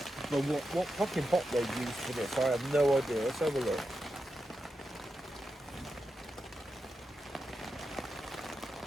But what fucking hop they've used for this, I have no idea. Let's have a look.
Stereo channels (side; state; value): both; normal; correlation 0.88